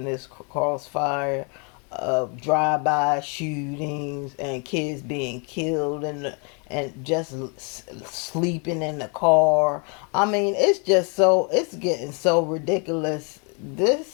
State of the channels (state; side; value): quieter; right; 36.4 dB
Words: this crossfire of drive-by shootings and kids being killed and just sleeping in the car. I mean, it's getting so ridiculous.